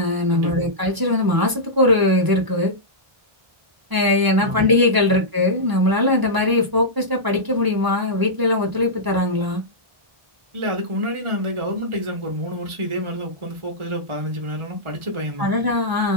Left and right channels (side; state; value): left; late; 1.0 ms